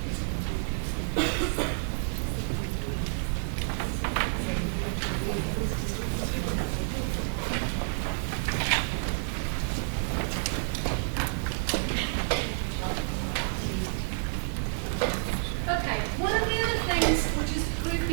Okay, one of the other things which is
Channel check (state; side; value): silent; left; 58 dB below the other